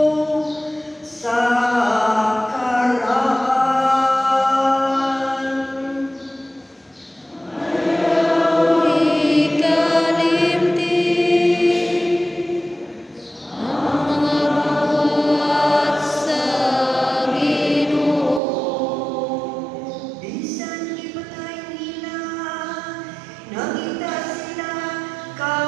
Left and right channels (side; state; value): left; drops out; at 18.4 s